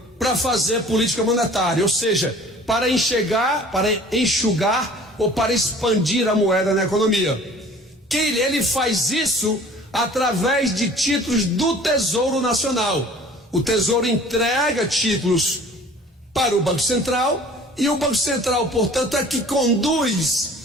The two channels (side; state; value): both; normal; correlation 0.48